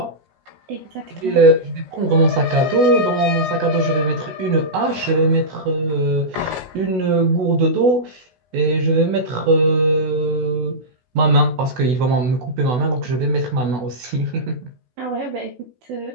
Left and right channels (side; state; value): left; late; 16 ms